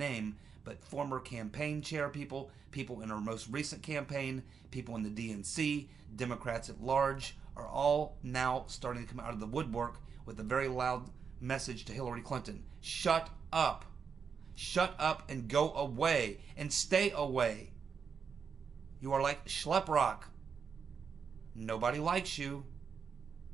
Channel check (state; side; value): quieter; left; 6.2 dB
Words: but former campaign chair people, people in her most recent campaign, people in the DNC, Democrats at large, are all now starting to come out of the woodwork with a very loud message to Hillary Clinton. Shut up. Shut up and go away and stay away. You are like Schleprock. Nobody likes you.